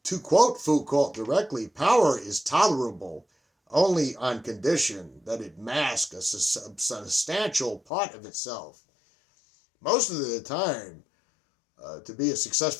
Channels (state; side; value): drops out; right; at 7.8 s